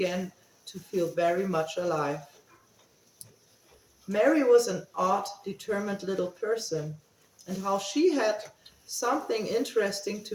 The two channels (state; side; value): identical; both; correlation 1.00